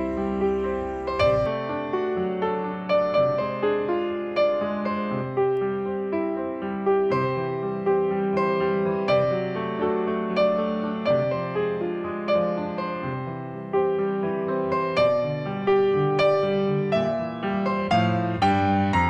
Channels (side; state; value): both; identical; correlation 1.00